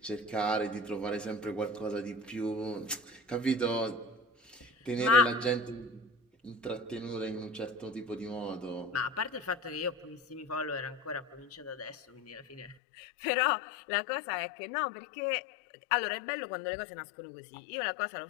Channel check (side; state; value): right; drops out; at 12.8 s